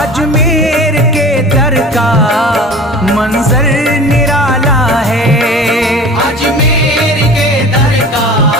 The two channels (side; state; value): both; normal; correlation 0.39